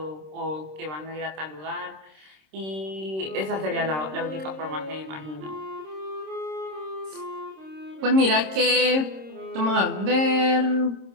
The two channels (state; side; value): late; left; 26 ms